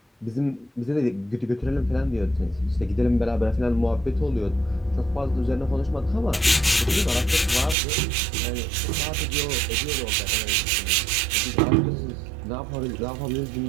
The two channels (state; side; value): drops out; left; at 7.8 s